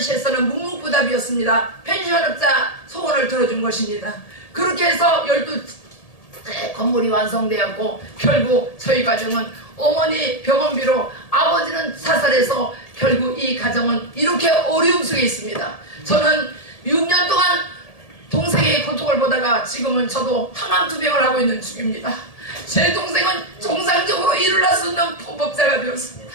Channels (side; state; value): right; late; 1.7 ms